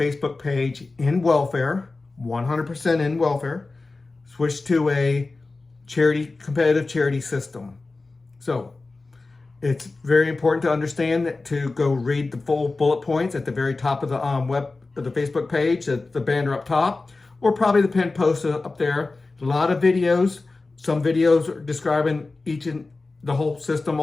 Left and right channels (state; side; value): quieter; right; 3.5 dB